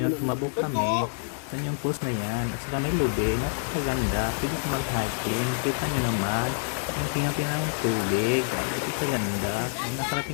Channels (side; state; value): right; silent; 60 dB below the other